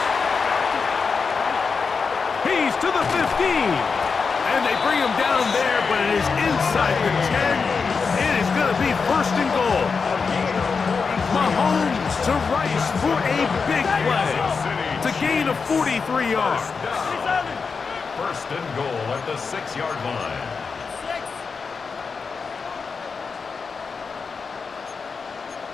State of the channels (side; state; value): right; quieter; 5.1 dB